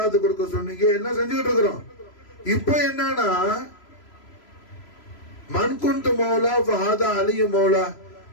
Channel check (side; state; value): right; late; 3.0 ms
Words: கொடுக்க சொன்னீங்க, எல்லாம் செஞ்சுக்கிட்டு இருக்கிறோம். இப்ப என்னன்னா மன்குண்டு மௌலா ஃபஹாதா அலியு மௌலா,